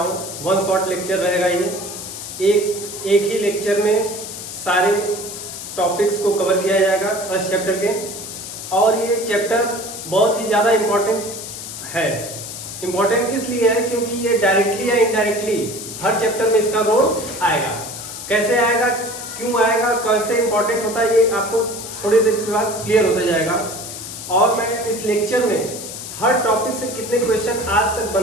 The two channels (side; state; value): left; noise; hiss, 9 dB below the sound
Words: वन शॉट लेक्चर रहेगा ये। एक ही लेक्चर में सारे टॉपिक्स को कवर किया जाएगा फर्स्ट चैप्टर के। और ये चैप्टर बहुत ही ज़्यादा इम्पॉर्टेंट है। इम्पॉर्टेंट इसलिए है क्योंकि ये डायरेक्टली या इनडायरेक्टली हर चैप्टर में इसका रोल आएगा। कैसे आएगा, क्यों आएगा, कैसे इंपॉर्टेंट होता है, ये आपको थोड़ी देर के बाद क्लियर होता जाएगा। और मैं इस लेक्चर में हर टॉपिक से कितने क्वेश्चन आज तक